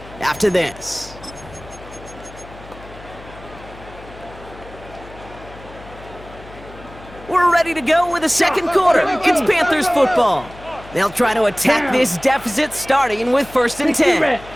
after this. We're ready to go with the 2nd quarter. It's Panthers football. They'll try to attack this deficit starting with 1st and 10.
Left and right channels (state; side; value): noise; left; hum, 18 dB below the sound